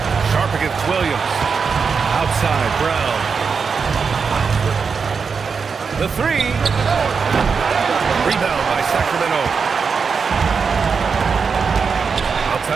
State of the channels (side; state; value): left; quieter; 5.6 dB